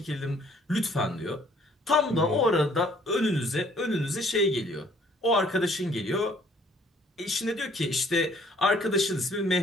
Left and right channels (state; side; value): normal; both; correlation 0.61